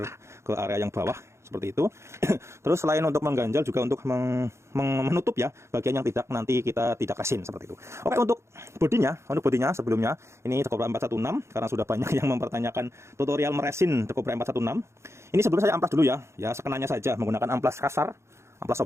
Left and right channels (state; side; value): late; left; 0.13 ms